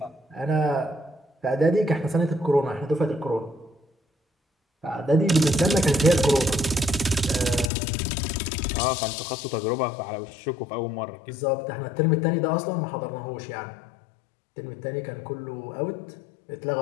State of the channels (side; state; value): right; drops out; at 7.7 s